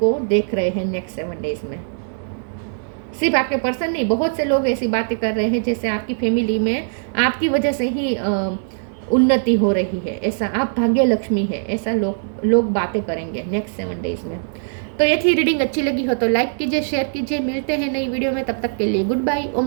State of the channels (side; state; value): left; silent; 64 dB below the other